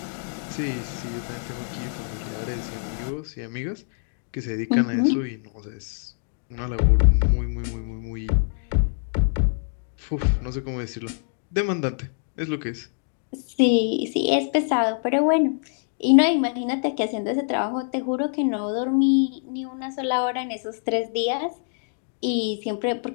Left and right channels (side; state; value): right; silent; digital silence